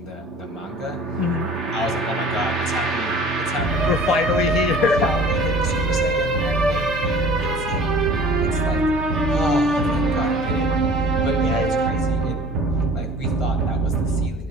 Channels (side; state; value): both; normal; correlation 0.46